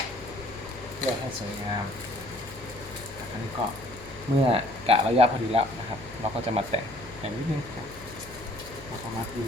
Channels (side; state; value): left; noise; hum, 17 dB below the sound